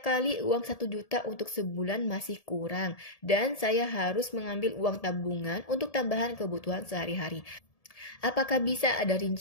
kali uang 1 juta untuk sebulan masih kurang dan saya harus mengambil uang tabungan untuk tambahan kebutuhan sehari-hari. Apakah bisa ada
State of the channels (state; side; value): late; right; 1.7 ms